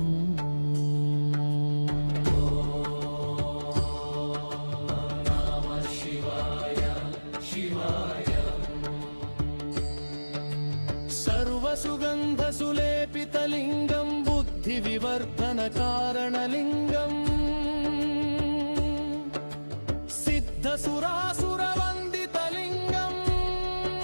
नमः शिवाय शिवाय सर्वसुगन्धसुलेपितलिङ्गं बुद्धिविवर्धनकारणलिङ्गम् सिद्धसुरासुरवन्दितलिङ्गम्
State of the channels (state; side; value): inverted; both; correlation -1.00